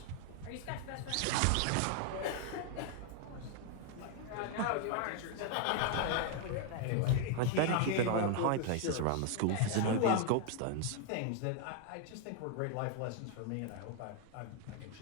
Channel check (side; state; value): both; different; correlation 0.00